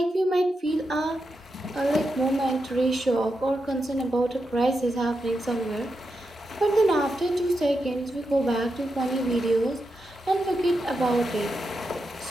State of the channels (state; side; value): normal; both; correlation 0.87